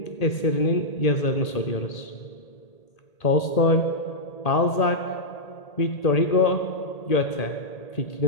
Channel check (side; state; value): right; late; 1.8 ms